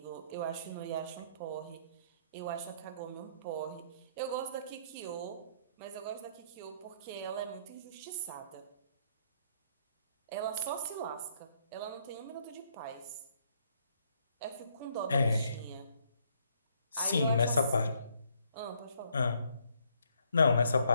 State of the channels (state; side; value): inverted; both; correlation -0.69